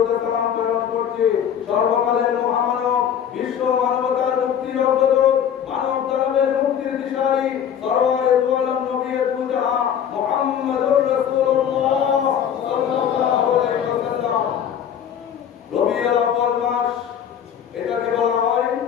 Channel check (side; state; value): right; quieter; 8.9 dB